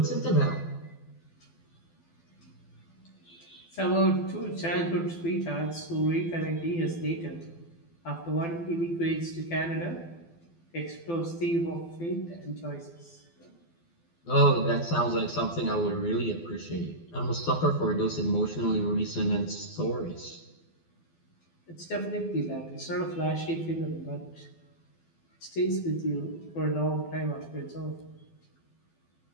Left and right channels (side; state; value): right; late; 12 ms